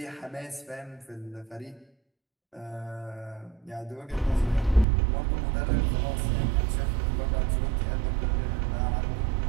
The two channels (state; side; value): drops out; left; at 4.9 s